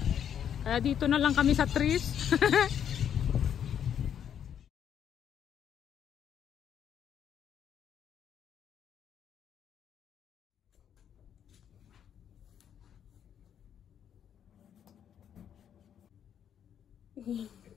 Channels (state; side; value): quieter; right; 9.0 dB